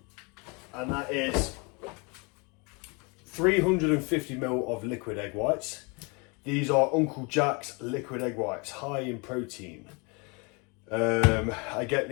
And that is 350 ml of liquid egg whites. These are Uncle Jack's liquid egg whites, high in protein. I get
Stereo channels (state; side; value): quieter; right; 30.9 dB